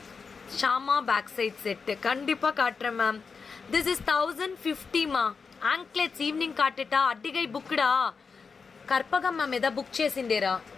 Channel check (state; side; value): quieter; right; 5.2 dB